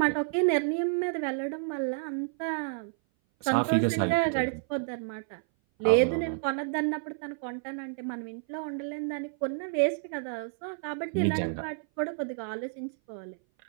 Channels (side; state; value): left; silent; 57 dB below the other